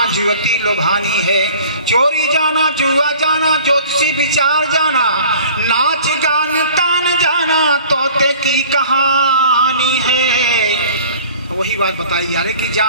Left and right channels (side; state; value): both; inverted; correlation -0.47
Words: जुवती लोभानी है चोरी जाना जुआ जाना ज्योतिषी विचार जाना नाच गान तान जाना तोते की कहानी है। वही बात बताई यार कि